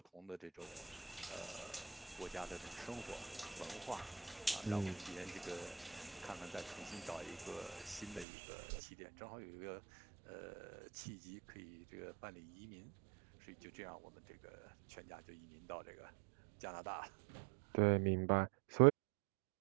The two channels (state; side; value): drops out; left; at 8.2 s